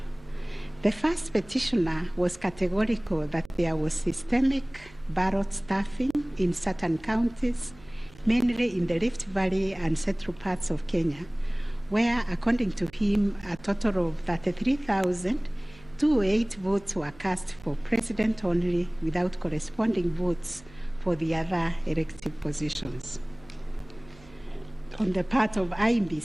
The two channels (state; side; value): noise; right; hum, 24 dB below the sound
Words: The first petitioner was categorical that there was systemic ballot stuffing in certain counties, mainly in the Rift Valley and central parts of Kenya, where, according to him, a total of 33,208 votes were cast for president only, without corresponding votes for the other elective positions. On the part of